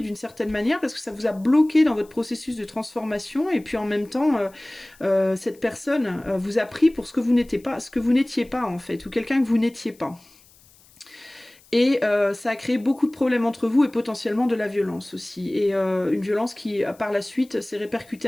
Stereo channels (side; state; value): left; noise; hiss, 28 dB below the sound